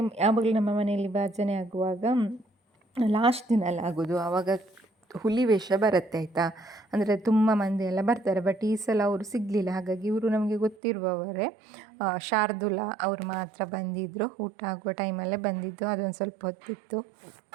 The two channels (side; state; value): left; drops out; at 10.8 s